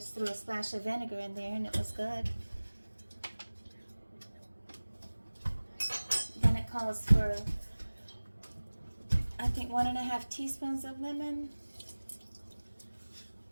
threw a splash of vinegar in there and it was good. Then it calls for, I think, 1.5 teaspoons of lemon.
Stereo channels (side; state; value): both; inverted; correlation -1.00